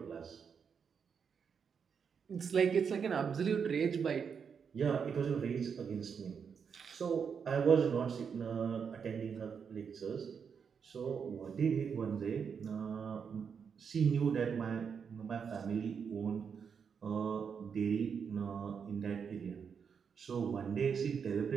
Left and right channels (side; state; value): left; quieter; 6.6 dB